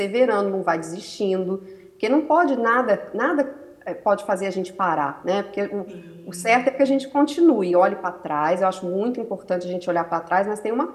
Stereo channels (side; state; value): both; identical; correlation 1.00